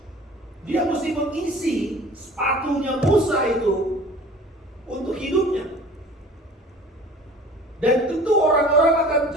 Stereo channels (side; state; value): both; normal; correlation 0.45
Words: dia mesti mengisi sepatunya Musa itu untuk hidupnya. Dan tentu orang-orang akan